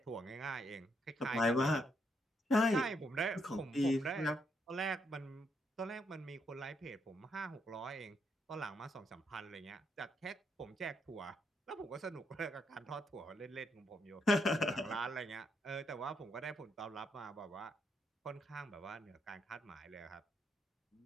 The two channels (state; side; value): normal; both; correlation 0.77